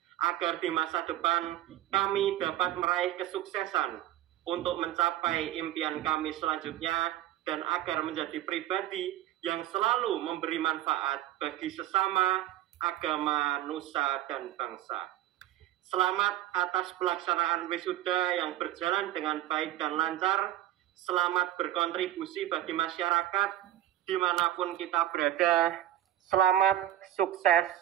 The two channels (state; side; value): quieter; left; 13.4 dB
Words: agar di masa depan kami dapat meraih kesuksesan untuk mencapai impian kami selanjutnya dan agar menjadi pribadi yang selalu memberi manfaat bagi sesama, agama, nusa, dan bangsa. Selamat atas pelaksanaan wisuda yang berjalan dengan baik dan lancar. Selamat berkontribusi bagi masyarakat dimanapun kita berada. Selamat, sukses,